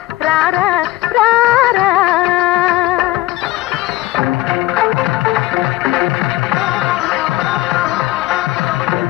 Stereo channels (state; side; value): quieter; right; 17.2 dB